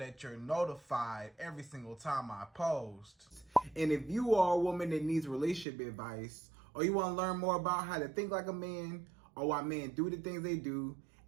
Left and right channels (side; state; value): left; drops out; at 5.7 s